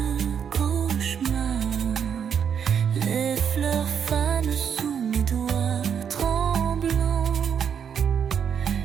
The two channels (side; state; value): left; quieter; 7.7 dB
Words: cauchemar. Les fleurs fanent sous mes doigts tremblants,